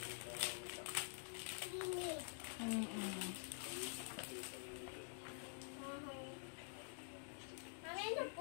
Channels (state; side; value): silent; right; digital silence